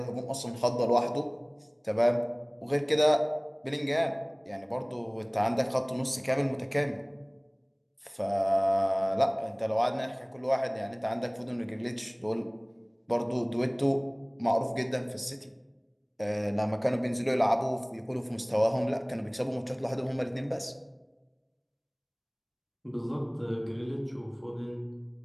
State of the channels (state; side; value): identical; both; correlation 1.00